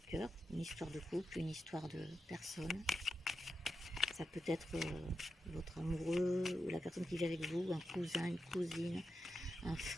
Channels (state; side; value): normal; both; correlation 0.88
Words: cœur, une histoire de couple, une histoire de personne. Ça peut être votre amoureux ou la personne qui vit avec vous, un cousin, une cousine, un